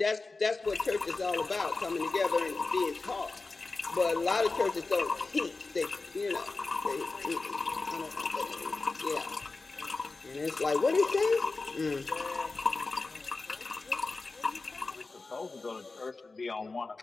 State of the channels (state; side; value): quieter; right; 3.7 dB